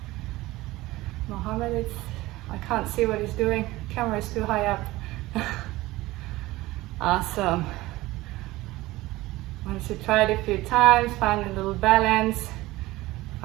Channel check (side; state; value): left; quieter; 18.7 dB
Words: Mohammed, I can't see what he's doing. Camera is too high up. Awesome. Once you try it a few times, find a little balance,